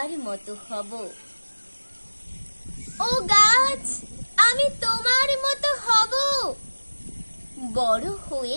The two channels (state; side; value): inverted; both; correlation -1.00